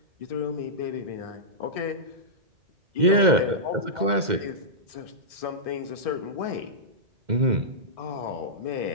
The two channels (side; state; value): left; late; 2.1 ms